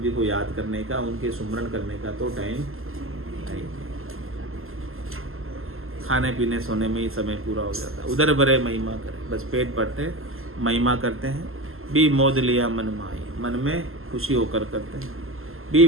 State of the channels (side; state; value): left; late; 0.61 ms